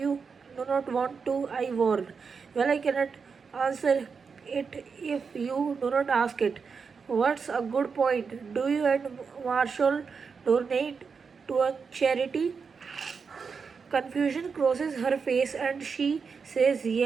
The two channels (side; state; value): left; quieter; 5.5 dB